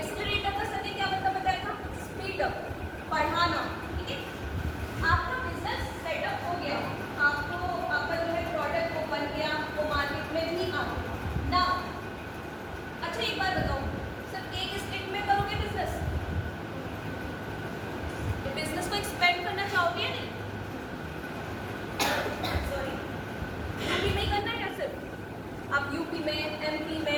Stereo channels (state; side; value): identical; both; correlation 1.00